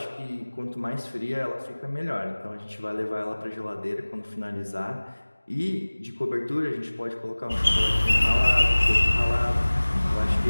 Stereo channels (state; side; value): inverted; both; correlation -1.00